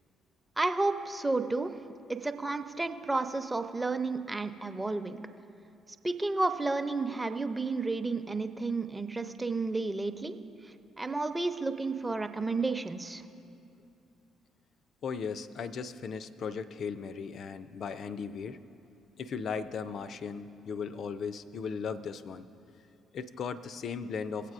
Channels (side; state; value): both; normal; correlation 0.86